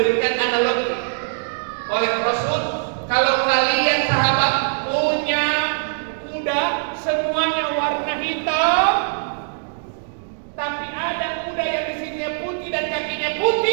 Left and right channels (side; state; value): left; silent; digital silence